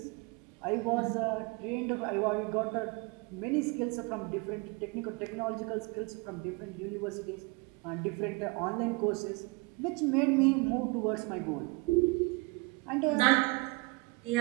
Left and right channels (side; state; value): left; quieter; 27.3 dB